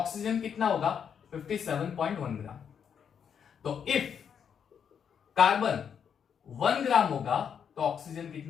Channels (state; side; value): quieter; right; 7.6 dB